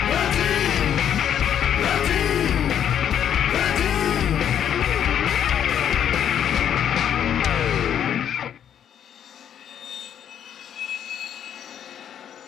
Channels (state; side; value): quieter; right; 9.3 dB